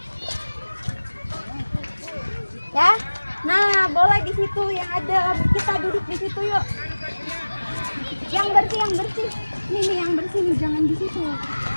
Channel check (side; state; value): both; inverted; correlation -1.00